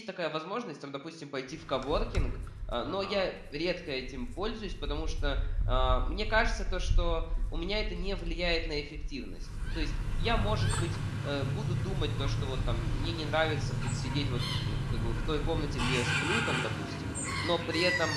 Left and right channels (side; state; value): both; identical; correlation 1.00